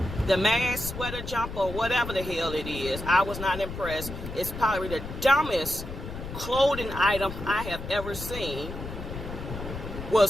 the mask sweater jumper, whatever the hell it is, I was not impressed. It's probably the dumbest clothing item I have ever seen.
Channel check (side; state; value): left; noise; rumble, 9 dB below the sound